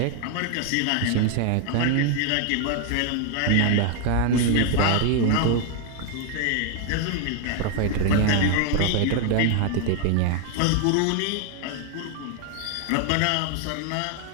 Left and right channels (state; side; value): different; both; correlation 0.00